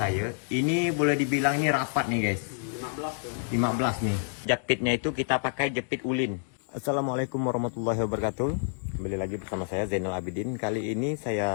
Ini boleh dibilang ini rapat nih guys. 15 nih. Jepitnya itu kita pakai jepit ulin. Assalamualaikum warahmatullahi wabarakatuh. Kembali lagi bersama saya Zainal Abidin. Kali ini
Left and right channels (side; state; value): right; silent; digital silence